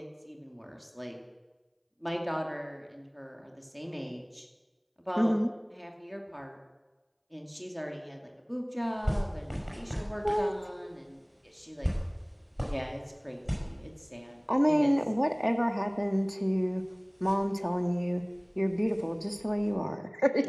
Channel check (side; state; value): both; identical; correlation 1.00